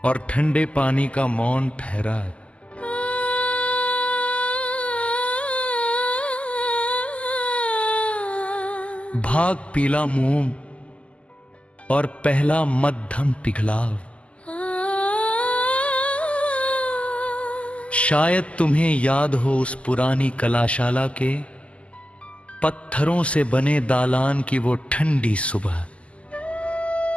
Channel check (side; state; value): right; late; 0.059 ms